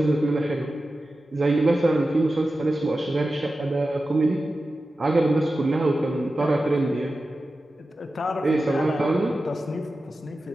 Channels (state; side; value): normal; both; correlation 0.93